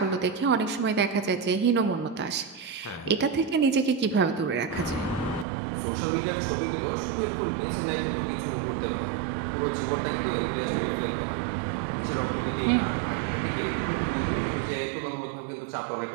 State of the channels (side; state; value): left; drops out; at 5.5 s